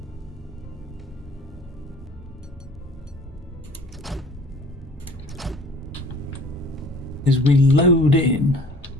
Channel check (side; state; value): both; normal; correlation 0.49